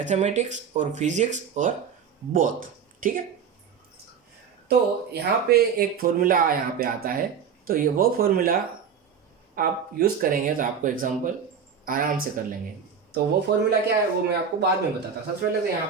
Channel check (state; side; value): quieter; left; 7.0 dB